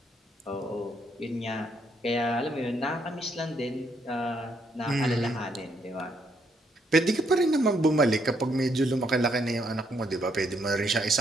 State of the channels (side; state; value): both; normal; correlation 0.73